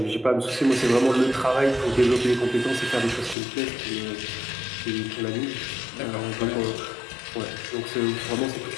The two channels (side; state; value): right; drops out; at 3.4 s